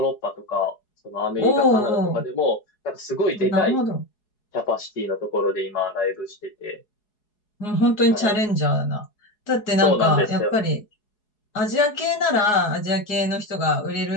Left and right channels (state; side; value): late; right; 4.7 ms